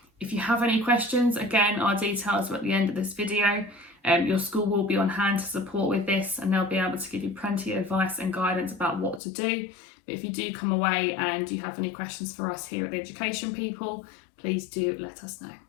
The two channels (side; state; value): right; drops out; at 9.2 s